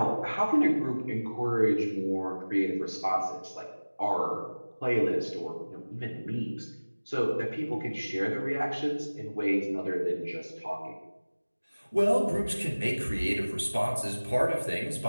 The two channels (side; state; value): both; inverted; correlation -1.00